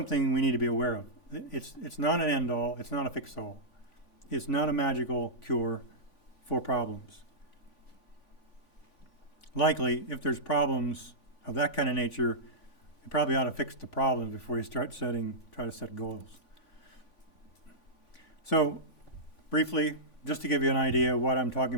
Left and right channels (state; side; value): late; right; 3.5 ms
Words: we need to be aware of. It's not an end-all. It's not a fix-all. It's not a magical cure for problems. Likely, if there's problems of that kind of nature, you probably ought to fix the problems before you try to set goals. So, briefly, just to give you an idea of what I'm talking